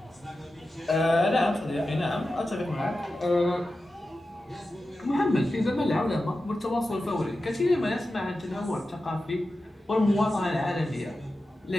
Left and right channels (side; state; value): both; normal; correlation 0.92